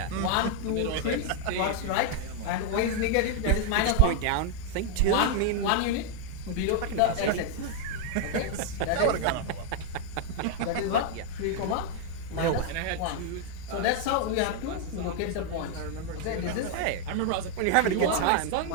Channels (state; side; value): different; both; correlation 0.01